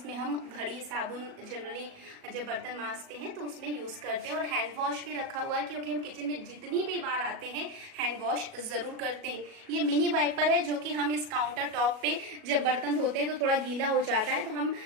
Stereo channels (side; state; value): left; late; 37 ms